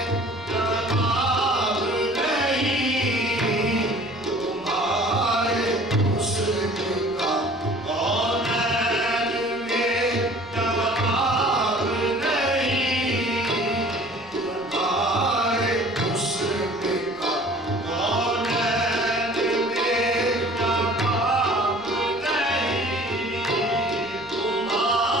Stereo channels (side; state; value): left; noise; rumble, 26 dB below the sound